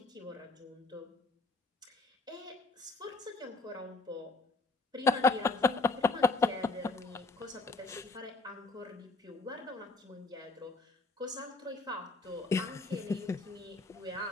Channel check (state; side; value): quieter; right; 3.6 dB